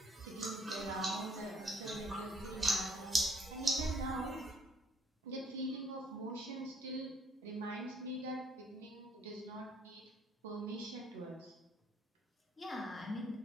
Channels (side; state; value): both; normal; correlation 0.64